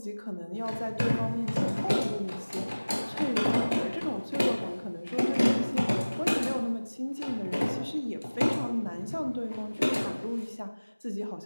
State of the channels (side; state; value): both; inverted; correlation -1.00